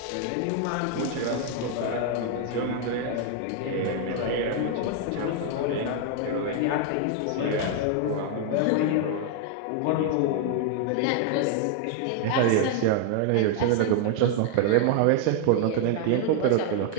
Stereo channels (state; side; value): different; both; correlation 0.00